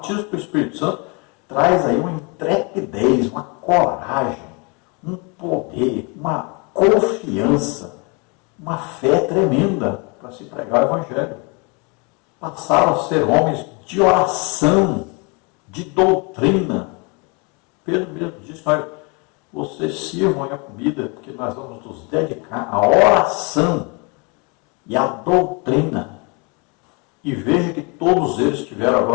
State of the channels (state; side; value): quieter; right; 31.4 dB